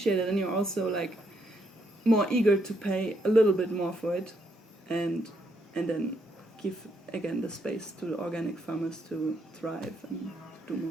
it, then you're also like more eager to pay a little bit more for it, and then give again the space to the organic farmers to thrive and do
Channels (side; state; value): both; normal; correlation 0.75